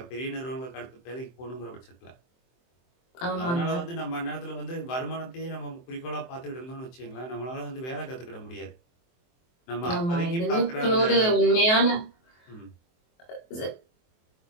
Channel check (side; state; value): right; late; 23 ms